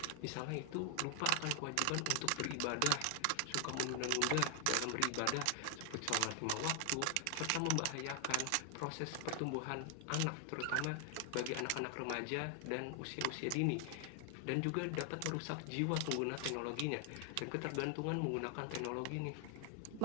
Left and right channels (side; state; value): both; different; correlation 0.00